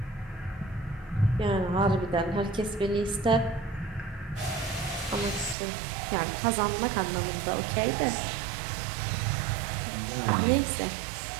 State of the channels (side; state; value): left; drops out; at 5.6 s